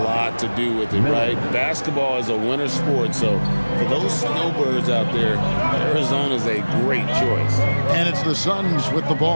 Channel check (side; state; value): both; inverted; correlation -1.00